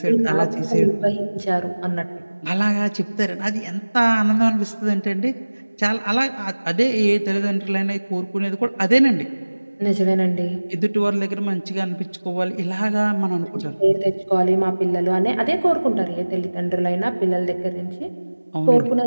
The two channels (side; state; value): both; inverted; correlation -1.00